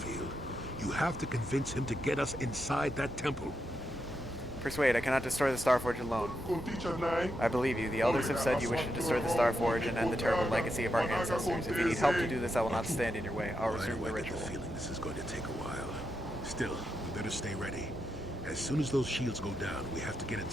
You have to convince him to get us inside that temple. Persuade, I cannot destroy the Star Forge alone. I believe you. The elders have said you wish to destroy the Star Forge and end the terrible legacy of our ancestors. If you need help to do this, I will not stand in your way. I'll resume the ritual. I get the feeling this is going to take a while. Still, we better stay ready. As soon as those shields go down, we have to get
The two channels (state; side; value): normal; both; correlation 0.84